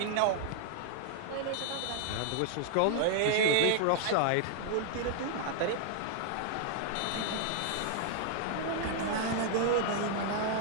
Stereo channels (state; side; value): different; both; correlation 0.00